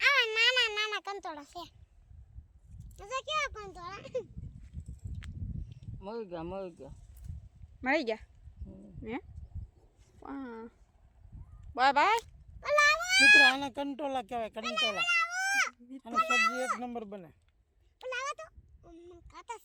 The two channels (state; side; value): identical; both; correlation 1.00